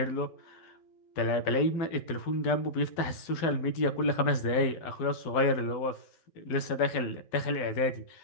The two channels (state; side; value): late; right; 11 ms